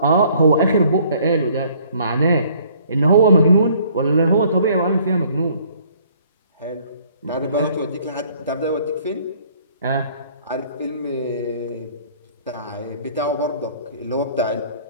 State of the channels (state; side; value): inverted; both; correlation -0.59